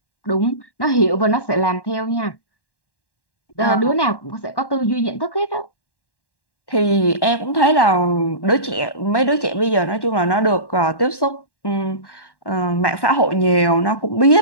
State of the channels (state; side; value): late; right; 1.1 ms